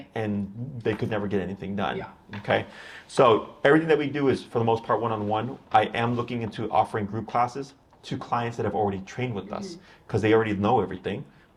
and they could never get anything done. Okay, so everything that we do is for the most part one-on-one. I am looking into offering group classes to clients that have already trained with us because they already know everything.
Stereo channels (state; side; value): identical; both; correlation 1.00